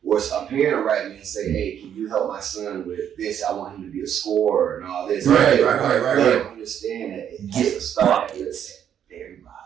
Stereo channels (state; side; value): quieter; left; 9.3 dB